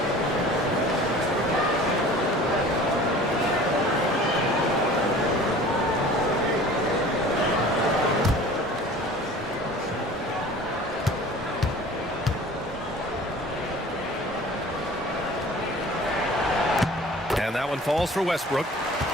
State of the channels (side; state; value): both; normal; correlation 0.44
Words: Falls for Westbrook.